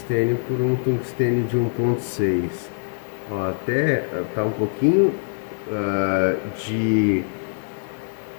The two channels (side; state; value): right; silent; 56 dB below the other